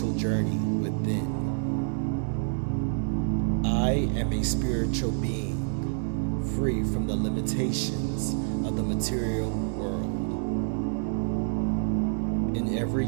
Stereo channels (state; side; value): silent; left; 59 dB below the other